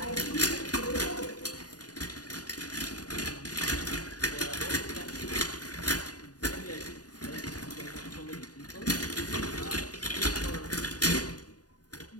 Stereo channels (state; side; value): late; right; 0.68 ms